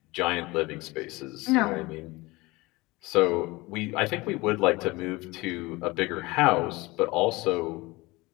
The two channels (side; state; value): right; quieter; 22.0 dB